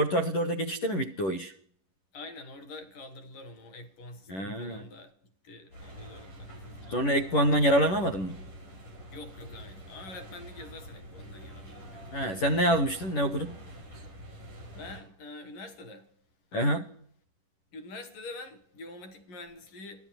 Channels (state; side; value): late; right; 11 ms